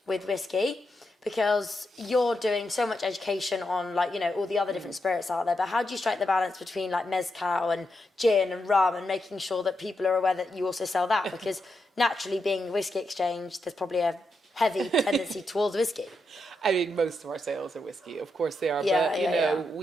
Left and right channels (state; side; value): normal; both; correlation 0.84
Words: with whiskey? Because you're doing so much education on all the other different spirits out there, but how do you strike the balance between like mezcal and gin and rum, and making sure that people are aware that you also sell that? Because naturally, being the Whisky Exchange, there's probably a heavy tendency towards whiskey. I mean, most of our sales are whiskey, of course they are. Yeah, but yeah.